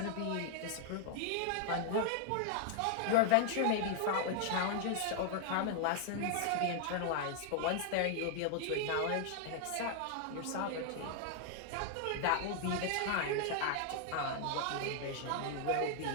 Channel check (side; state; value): both; different; correlation 0.00